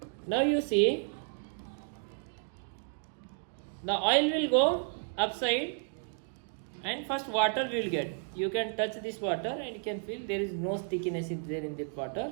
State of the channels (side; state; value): left; silent; 56 dB below the other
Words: Now you see, the oil will go upside and first water will get. You can touch this water and you can feel there is no stickiness there in that